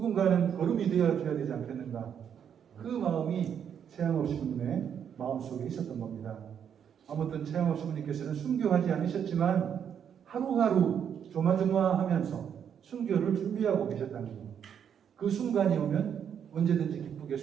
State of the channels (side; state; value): left; quieter; 8.3 dB